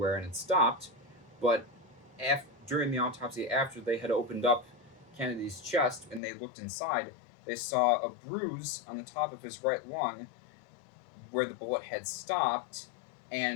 and it stopped, but during the autopsy, after they had opened up Kennedy's chest and they looked inside, they saw a bruise on the top of his right lung where the bullet had stopped,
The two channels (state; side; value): drops out; right; at 6.2 s